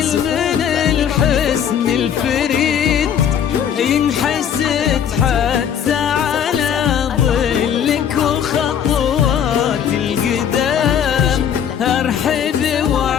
من الحسن الفريد ينحسد حتى على ظلك وخطوات القدام ارحب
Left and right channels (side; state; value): right; quieter; 8.6 dB